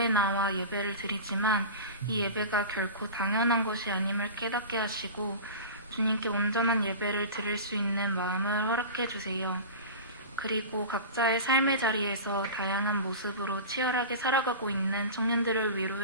나와 예배를 드리지만 이 예배가 결코 당연한 것이 아님을 깨닫게 하시고 주님께 온전한 예배를 드릴 수 있는 마음을 허락해 주세요. 그리고 각자의 삶의 자리에서 다양한 모습으로 치열하게 살아가고 있는 청년들을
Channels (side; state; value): both; inverted; correlation -0.32